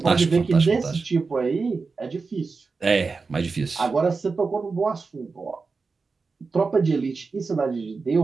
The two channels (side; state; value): left; quieter; 4.4 dB